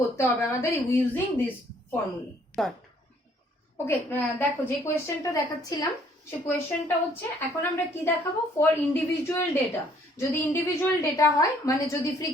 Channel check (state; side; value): normal; both; correlation 0.63